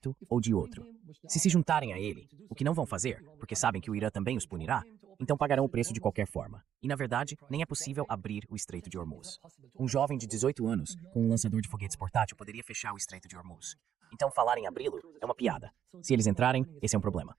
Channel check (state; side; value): quieter; left; 9.7 dB